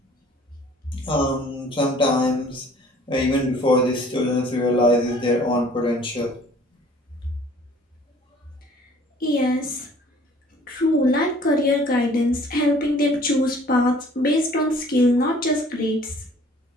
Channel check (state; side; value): normal; both; correlation 0.53